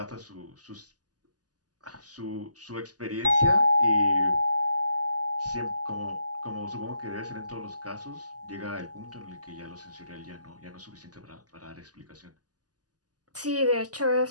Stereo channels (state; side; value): late; left; 0.68 ms